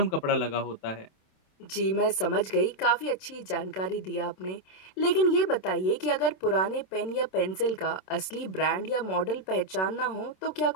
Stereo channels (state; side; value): late; right; 27 ms